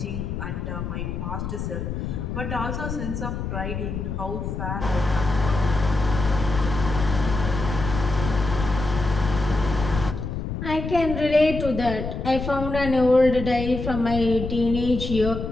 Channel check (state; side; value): noise; left; rumble, 5 dB below the sound